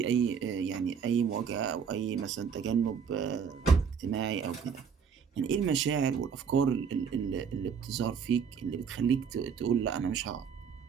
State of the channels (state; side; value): quieter; left; 6.7 dB